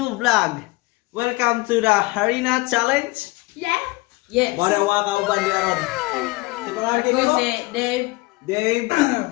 vlog. Welcome to the Harina Challenge. Yeah. Yes. Mara wa kauban di aron. Si pangalan Ako kini si Dave. Dave.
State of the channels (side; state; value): right; quieter; 22.6 dB